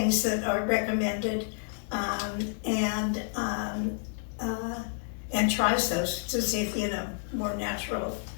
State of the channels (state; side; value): silent; right; digital silence